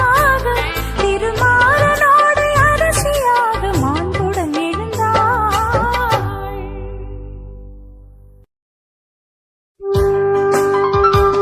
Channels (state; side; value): identical; both; correlation 1.00